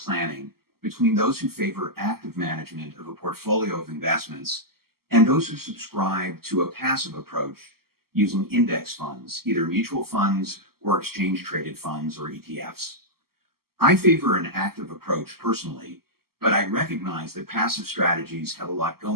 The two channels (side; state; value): left; late; 0.94 ms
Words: between those who favor active management of a portfolio of investments and those who subscribe to a passive approach using index funds, either mutual funds or exchange-traded funds or ETFs. I favor an active approach personally, but I recognize that passive strategies have a lot